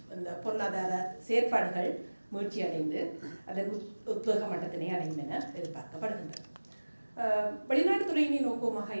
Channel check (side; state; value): both; inverted; correlation -1.00